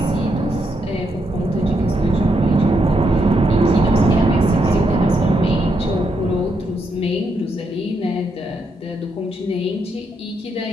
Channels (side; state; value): both; normal; correlation 0.79